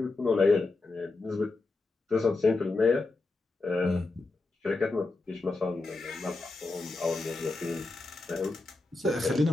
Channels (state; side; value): quieter; right; 3.3 dB